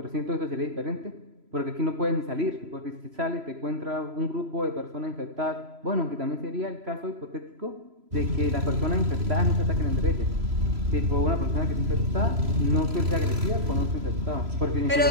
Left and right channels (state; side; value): late; left; 3.0 ms